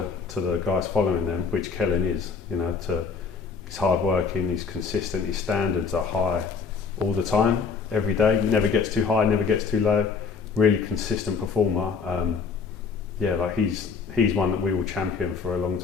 the guys following them, which Kellen is, he's hard working, he's consistent, his standards are high all the time, every day, never gets too high, never gets too low, really consistent performer. He's one that we will champion for a long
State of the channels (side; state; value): right; quieter; 5.4 dB